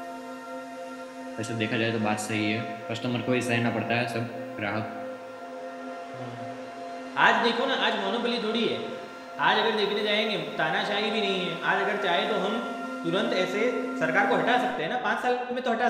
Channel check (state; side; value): identical; both; correlation 1.00